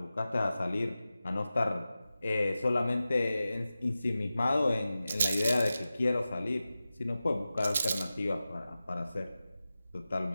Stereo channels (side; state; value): both; inverted; correlation -0.94